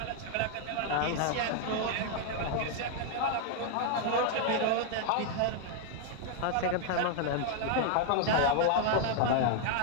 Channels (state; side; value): different; both; correlation 0.00